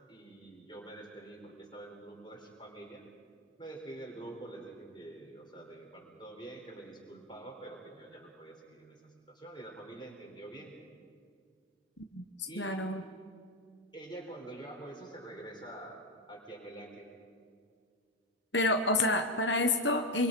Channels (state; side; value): normal; both; correlation 0.10